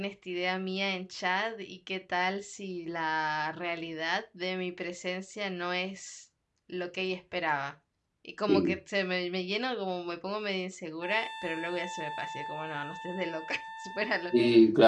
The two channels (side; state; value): both; identical; correlation 1.00